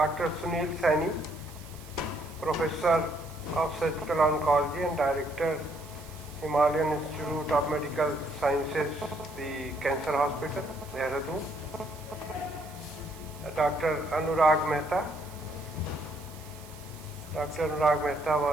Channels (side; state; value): right; noise; hiss, 20 dB below the sound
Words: Sunil Saini, Professor of Surgical Oncology and Director, Himalayan Institute of Medical Sciences, the Cancer Hospital, Dehradun. Dr. Anurag Mehta. Dr. Anurag Mehta